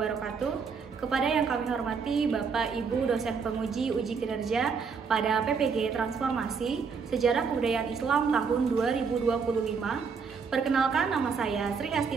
Kepada yang kami hormati Bapak Ibu dosen penguji uji kinerja pada PPG Transformasi Sejarah Kebudayaan Islam tahun 2025. Perkenalkan, nama saya Sri Asti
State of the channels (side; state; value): left; quieter; 5.6 dB